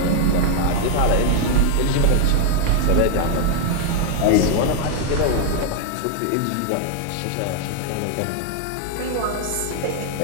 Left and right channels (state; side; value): different; both; correlation 0.00